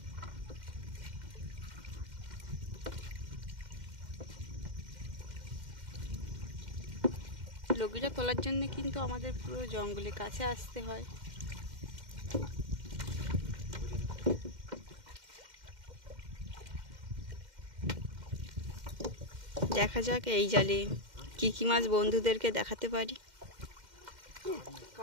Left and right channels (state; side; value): late; left; 2.1 ms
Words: লগিটা তোলার জন্য কিন্তু আমাদের পুরো জঙ্গলের কাছে আসতে হয়। দেখা যাক এই জালে কি কি মাছ বন্ধুদেরকে দেখাতে পারি।